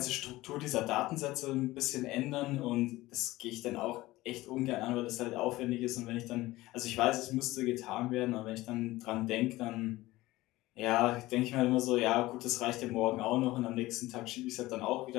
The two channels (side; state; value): right; quieter; 18.3 dB